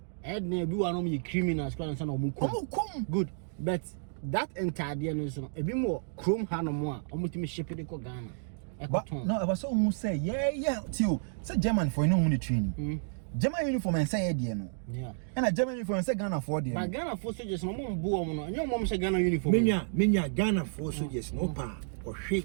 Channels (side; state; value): left; silent; digital silence